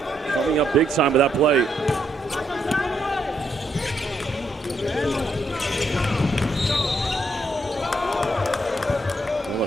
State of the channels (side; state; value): both; normal; correlation 0.76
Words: Coming up big time with that play.